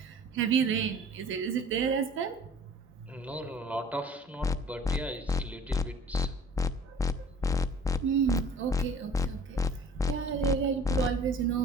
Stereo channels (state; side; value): normal; both; correlation 0.49